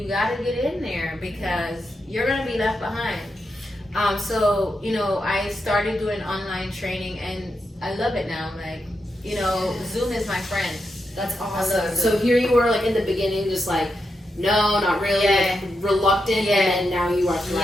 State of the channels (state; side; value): normal; both; correlation 0.86